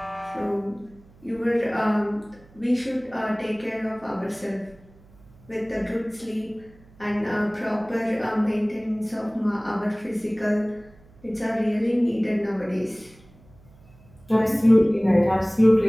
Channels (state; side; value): noise; right; hum, 26 dB below the sound